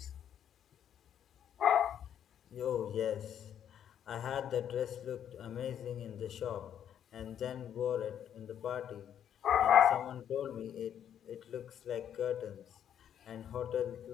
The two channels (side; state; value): right; quieter; 9.5 dB